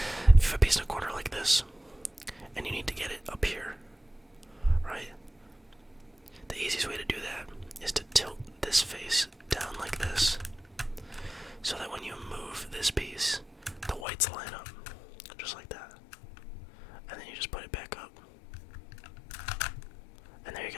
If you have a piece in a corner like this, and you need to get it up here, right? The easiest way to do that is to tilt this face down like this, so that when you move this piece, the whites line up, just like that. And then you just put it back up. And there you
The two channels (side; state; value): right; drops out; at 14.1 s